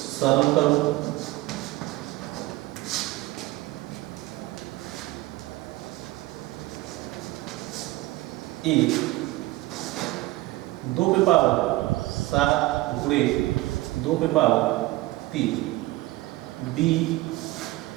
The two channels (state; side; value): quieter; left; 19.2 dB